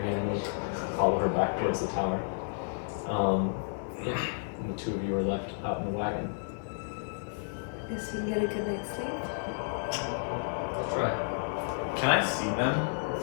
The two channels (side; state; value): right; silent; digital silence